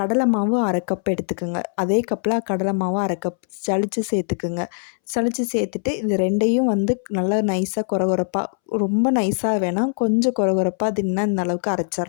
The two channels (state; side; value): silent; right; 64 dB below the other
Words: மாவு 1/2 கப் எடுத்துக்கோங்க. அதே கப்பில் கடலை மாவு 1/2 கப் சலிச்சு சேர்த்துக்குங்க. சலிச்சு சேர்த்துட்டு இது 2யும் வந்து நல்லா நைஸாக கொரகொரப்பாக, ரொம்ப நைஸாக வேணாம், கொஞ்சம் கொரகொரப்பாக அது இன்னும் இந்த அளவுக்கு